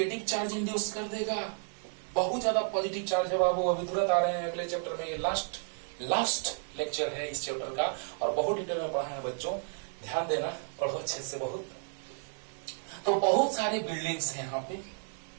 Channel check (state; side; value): silent; left; 56 dB below the other